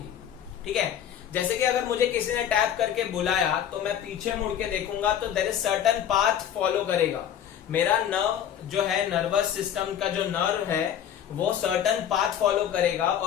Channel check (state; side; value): quieter; right; 9.8 dB